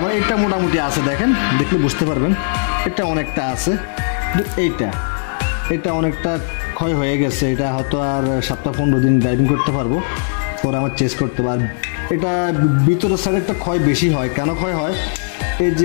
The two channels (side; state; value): right; silent; digital silence